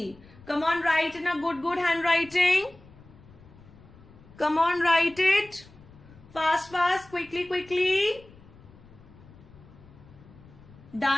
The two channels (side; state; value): left; noise; rumble, 23 dB below the sound